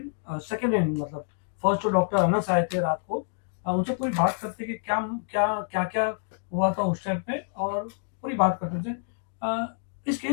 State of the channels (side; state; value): right; silent; digital silence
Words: सेकेंड हैंड मतलब फर्स्ट तो डॉक्टर अनस आए थे रात को, उनसे पूरी बात करते कि क्या क्या क्या क्या हुआ था उस टाइम पे, और पूरी बात करते थे। इस